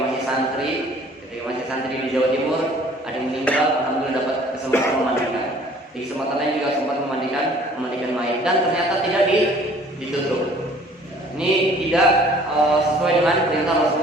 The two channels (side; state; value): both; normal; correlation 0.54